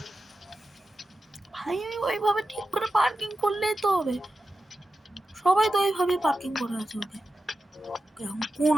ভাই, আমি ওইভাবে ঠিক করে পার্কিং করলেই তো হবে। সবাই তো ওইভাবে পার্কিং করে আছে। ওকে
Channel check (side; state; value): both; normal; correlation 0.91